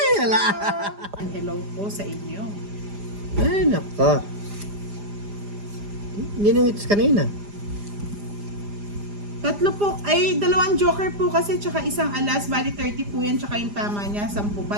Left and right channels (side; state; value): left; late; 4.9 ms